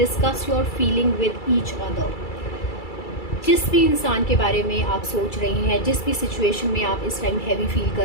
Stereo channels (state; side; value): late; right; 2.3 ms